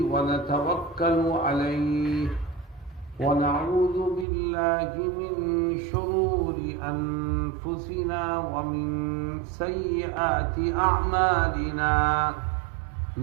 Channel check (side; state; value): left; drops out; at 4.2 s